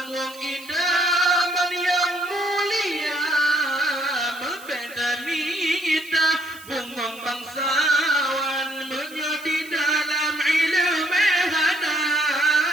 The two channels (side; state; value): right; noise; hiss, 19 dB below the sound